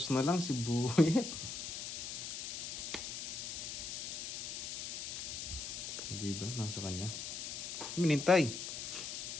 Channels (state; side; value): noise; left; hiss, 5 dB below the sound